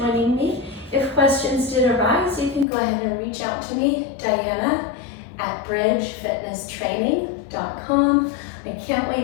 me. If questions did arise, you can go ahead and reach out to me, Diana at bridgefitnesstraining.com. I can't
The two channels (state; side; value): drops out; right; at 2.7 s